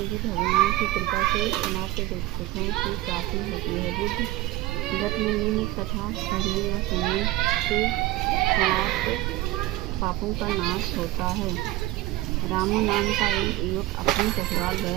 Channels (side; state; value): left; quieter; 17.2 dB